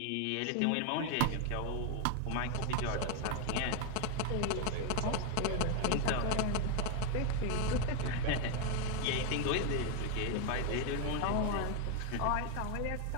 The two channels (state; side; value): different; both; correlation 0.01